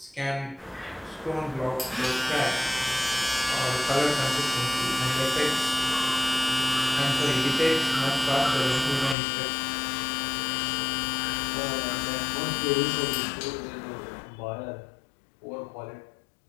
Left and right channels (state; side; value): drops out; right; at 9.2 s